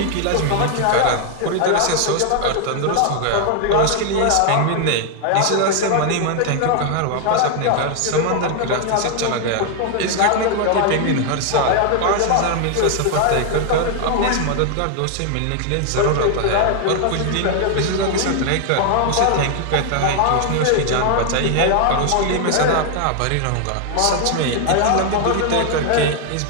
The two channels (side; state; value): both; different; correlation 0.00